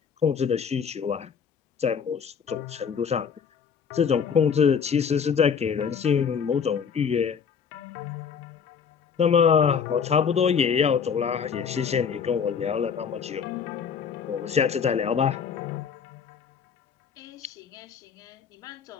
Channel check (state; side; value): quieter; right; 6.8 dB